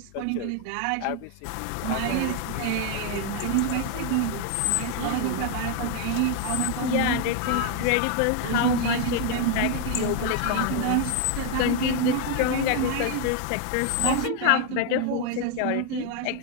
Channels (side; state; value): both; different; correlation 0.00